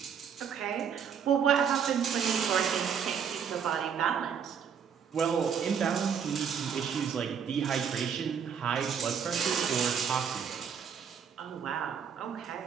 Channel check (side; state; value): left; quieter; 7.3 dB